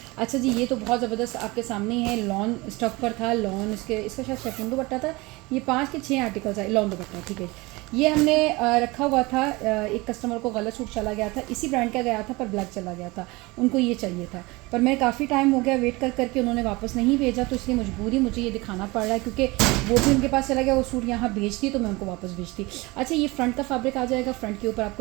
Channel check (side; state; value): left; quieter; 23.2 dB